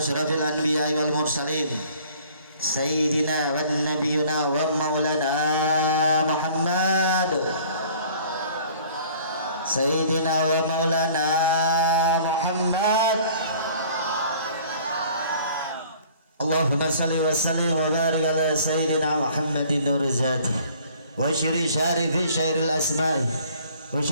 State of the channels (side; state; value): both; inverted; correlation -0.53